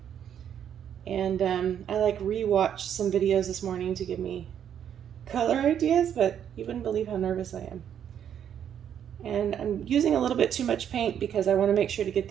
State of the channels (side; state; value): left; quieter; 9.2 dB